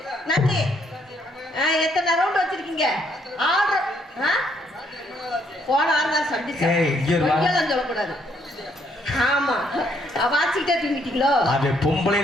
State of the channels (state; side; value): normal; both; correlation 0.70